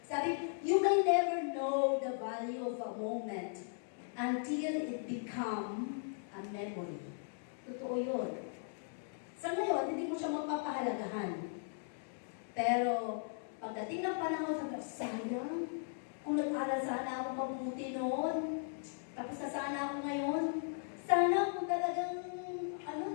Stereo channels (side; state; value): right; silent; digital silence